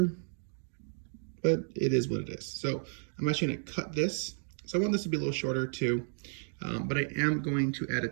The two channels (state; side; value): silent; left; 56 dB below the other